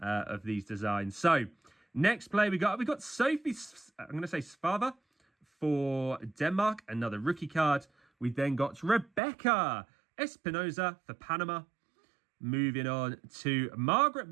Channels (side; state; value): left; drops out; at 9.2 s